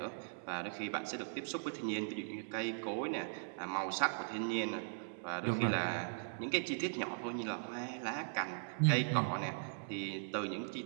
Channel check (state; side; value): silent; left; digital silence